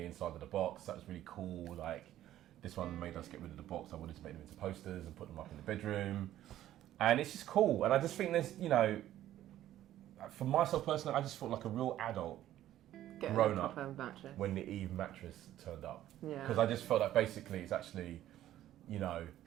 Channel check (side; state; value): left; quieter; 12.9 dB